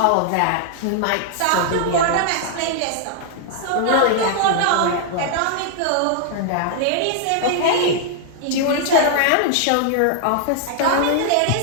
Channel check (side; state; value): both; different; correlation 0.00